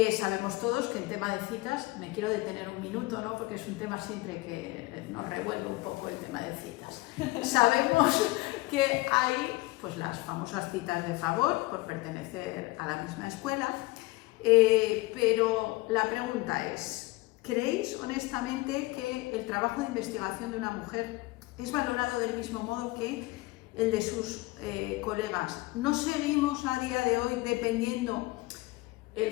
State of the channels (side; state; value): right; quieter; 21.4 dB